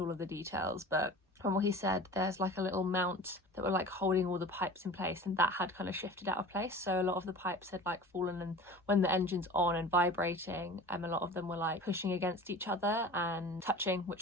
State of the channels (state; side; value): normal; both; correlation 0.39